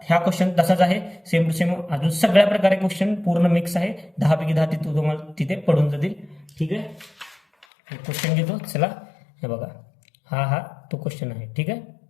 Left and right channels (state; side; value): drops out; right; at 7.7 s